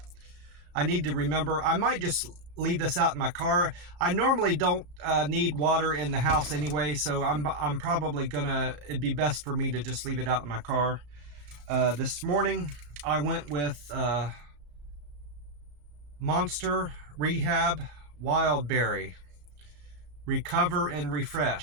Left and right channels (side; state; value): left; late; 34 ms